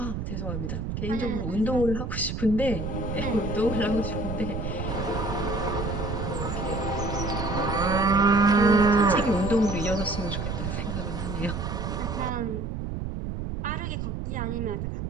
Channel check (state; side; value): noise; right; rumble, 4 dB below the sound